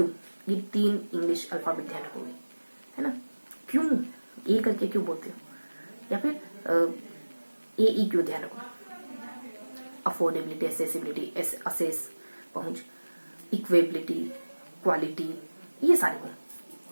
ये 3 इंग्लिश अल्फाबेट ध्यान रखोगे, है ना। क्यों ए करके क्यों बोलते हो, या फिर ए ई क्यों ध्यान रखो। अफोर्डेबिलिटी, एसेसिबिलिटी, असेस पहुंच, इक्वेबिलिटी, क्वालिटी, ये सारे गुण,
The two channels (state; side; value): inverted; both; correlation -1.00